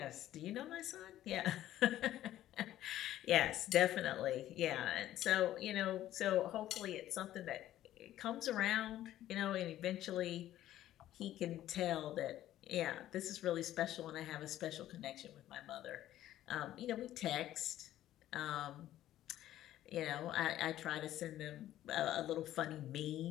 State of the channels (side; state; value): right; quieter; 13.2 dB